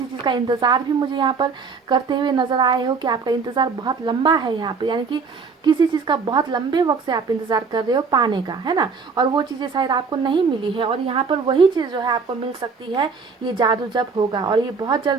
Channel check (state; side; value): quieter; left; 5.0 dB